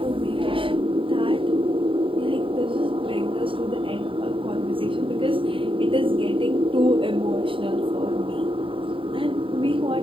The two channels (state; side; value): late; left; 0.25 ms